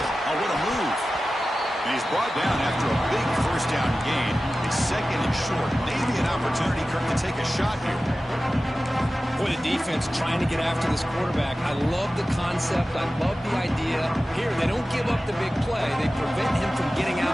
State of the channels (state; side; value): normal; both; correlation 0.95